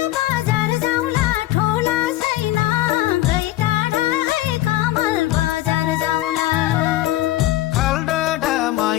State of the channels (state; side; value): quieter; right; 15.6 dB